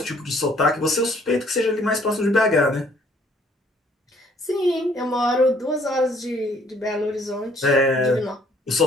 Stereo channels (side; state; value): both; normal; correlation 0.62